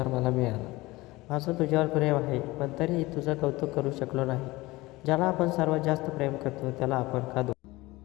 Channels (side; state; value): right; quieter; 20.5 dB